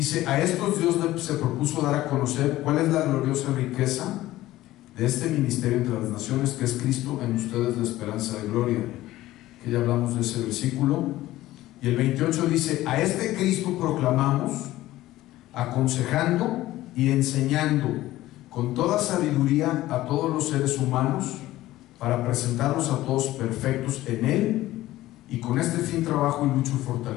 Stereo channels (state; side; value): quieter; right; 16.0 dB